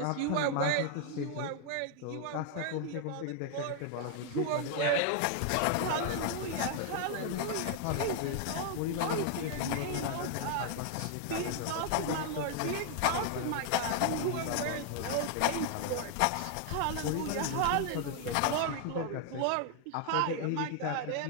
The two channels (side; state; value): both; different; correlation 0.00